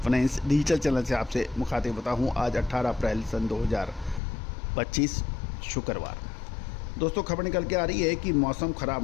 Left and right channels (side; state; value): right; drops out; at 4.2 s